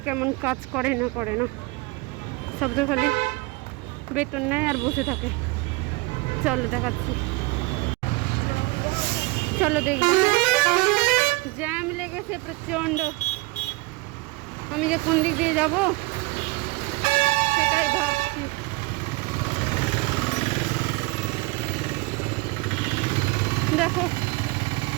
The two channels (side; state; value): left; quieter; 24.1 dB